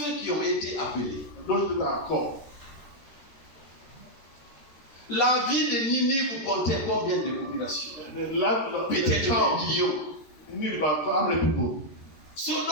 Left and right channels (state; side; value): late; right; 13 ms